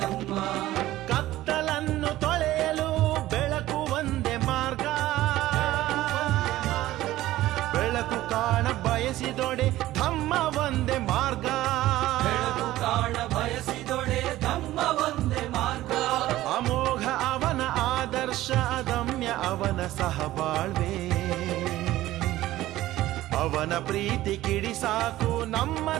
ಕತ್ತಲನ್ನು ತೊಳೆಯಲು ಬೆಳಕು ಒಂದೇ ಮಾರ್ಗ ಬೆಳಕು ಕಾಣ ಬಯಸಿದೊಡೆ ಧಮ್ಮ ಒಂದೇ ಮಾರ್ಗ ಬೆಳಕು ಕಾಣ ಬಯಸಿದೊಡೆ ಧಮ್ಮ ಒಂದೇ ಮಾರ್ಗ ಅಮೋಘ ಅವನ ಆದರ್ಶ ಅದಮ್ಯ ಅವನ ಸಹಬಾಳ್ವೆ ಅವನ ಪ್ರೀತಿ ಕಿಡಿ ಸಾಕು ನಮ್ಮ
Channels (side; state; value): left; quieter; 15.6 dB